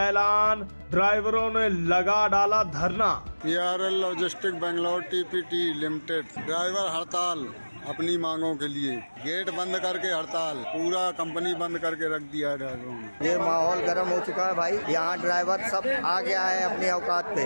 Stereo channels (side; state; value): both; inverted; correlation -1.00